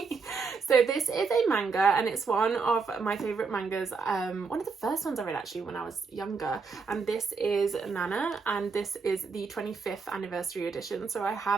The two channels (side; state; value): left; quieter; 4.9 dB